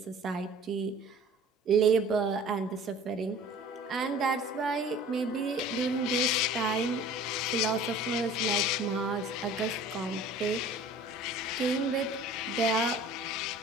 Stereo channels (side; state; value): both; normal; correlation 0.46